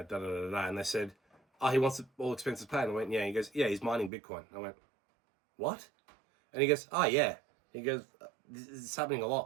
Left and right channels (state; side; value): drops out; left; at 4.1 s